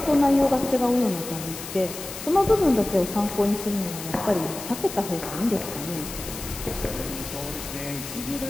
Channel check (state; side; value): noise; left; hiss, 10 dB below the sound